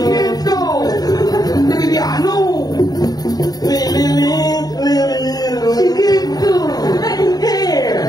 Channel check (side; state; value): right; late; 0.19 ms